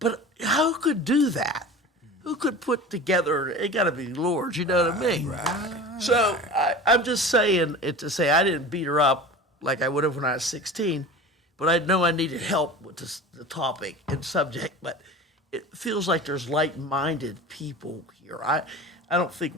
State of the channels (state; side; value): normal; both; correlation 0.35